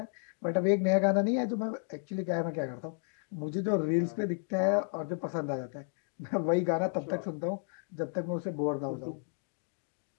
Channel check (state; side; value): silent; right; 56 dB below the other